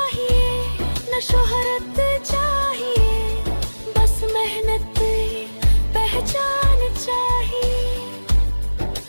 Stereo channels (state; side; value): inverted; both; correlation -1.00